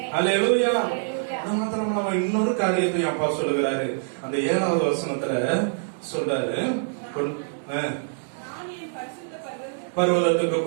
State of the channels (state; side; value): silent; left; digital silence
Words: அல்லேலூயா. அது மாத்திரம் நம்ம இன்னொரு காரியத்தையும் அப்பா சொல்லுகிறாரு. அந்த 7வது வசனத்துல சொல்றாரு, பர்வதத்துக்கு